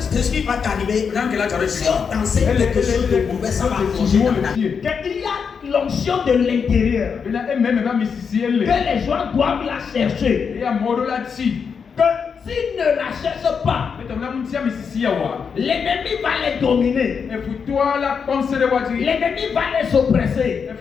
ce qui va t'arriver. Si on t'enseigne quelque chose de mauvais, ça va changer dans ta vie. Il y a l'onction de l'intérieur que les gens doivent la chercher. Que s'ils ne la cherchent pas, l'ennemi va les dominer. L'ennemi va les oppresser.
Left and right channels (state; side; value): quieter; right; 6.2 dB